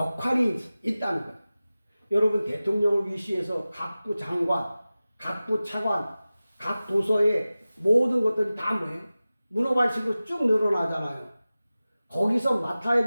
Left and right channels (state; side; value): inverted; both; correlation -0.96